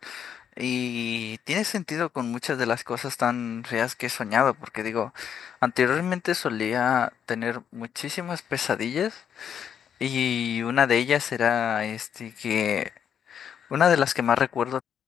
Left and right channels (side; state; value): right; quieter; 8.4 dB